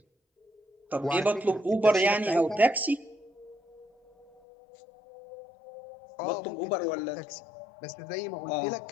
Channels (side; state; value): right; drops out; at 4.3 s